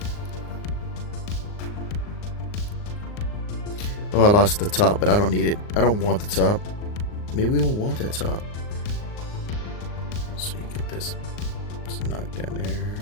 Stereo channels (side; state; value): right; late; 39 ms